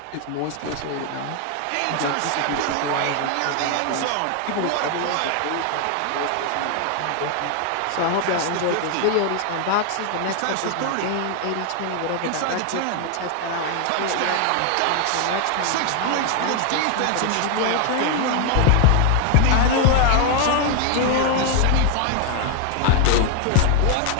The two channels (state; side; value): different; both; correlation 0.01